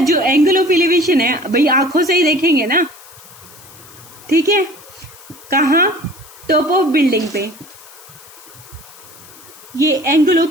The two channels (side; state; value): left; noise; hiss, 21 dB below the sound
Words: एंगल ऑफ एलिवेशन है भाई, आंखों से ही देखेंगे ना, ठीक है, कहाँ, टॉप ऑफ बिल्डिंग पे। ये एंगल